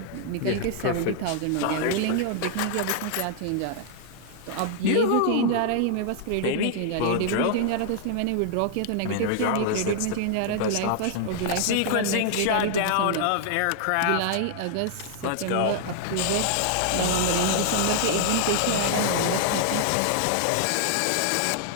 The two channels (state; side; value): different; both; correlation 0.00